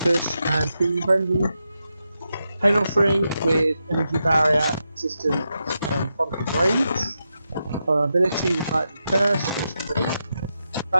and Healing Frenzy. Pain Offering with Energy Barrier, Resistance, and Front of Rage. Vulnerability with Light Curse,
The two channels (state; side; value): inverted; both; correlation -0.86